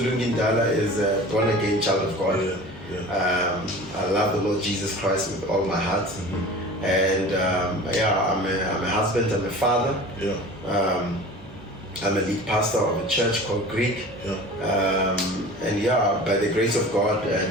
is a born again child of God. Yeah. I love the Lord Jesus Christ with all my heart. Mm-hmm. And I'm a husband, I'm a father. Yeah. I'm a lead pastor of a church called GRIC. Yeah. And by the grace of God,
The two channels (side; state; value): both; normal; correlation 0.39